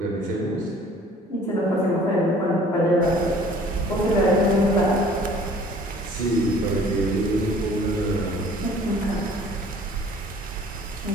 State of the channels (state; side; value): normal; both; correlation 0.52